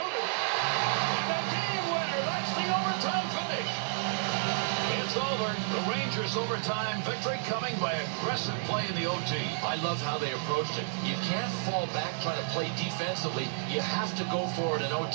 And a game winner. That's the overtime finish. It's over. The Rangers' overtime victory coming by aggressive play in the OT. I love how they approached it. You can't fall back trying to play defensively. You have to go for it in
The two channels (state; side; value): silent; left; digital silence